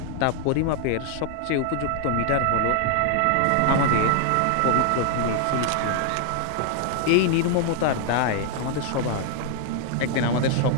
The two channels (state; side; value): different; both; correlation 0.00